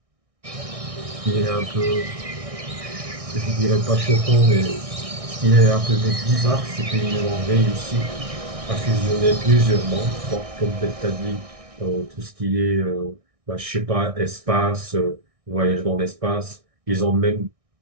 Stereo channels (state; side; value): late; left; 1.6 ms